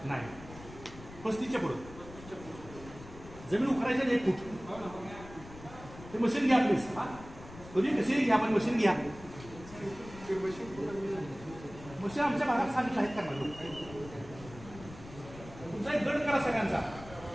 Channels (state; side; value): noise; left; rumble, 16 dB below the sound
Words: 35च्या पुढं जमीन उखडायच्या 1 फूट ते मशीन घ्या प्लीज. हा कधी कशी घ्या, पण मशीन घ्या. मशीन आमच्या भागात सांगितलं आहेत करणार लोक. तुमचा एक गट करा, सगळ्यांचा